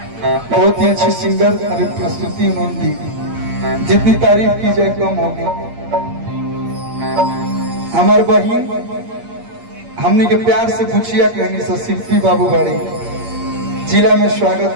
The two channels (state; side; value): late; left; 8.6 ms